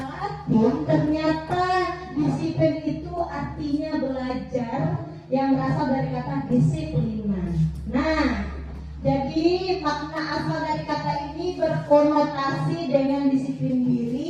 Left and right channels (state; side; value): identical; both; correlation 1.00